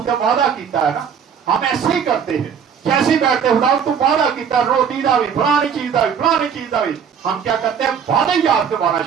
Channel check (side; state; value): left; quieter; 7.3 dB